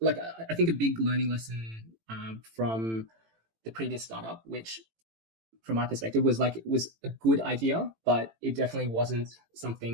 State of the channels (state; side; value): late; left; 18 ms